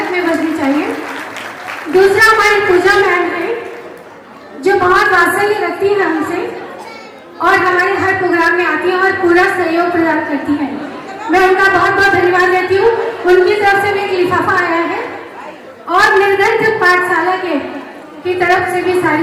में बजनी चाहिए। दूसरा हमारी पूजा मैम है जो बहुत वात्सल्य रखती है हमसे और हमारे हर प्रोग्राम में आती है और पूरा सहयोग प्रदान करती है। मैं उनका बहुत बहुत धन्यवाद देती हूँ। उनकी तरफ से भी एक लिफाफा आया है और निर्धन पाठशाला की तरफ से भी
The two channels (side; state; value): both; identical; correlation 1.00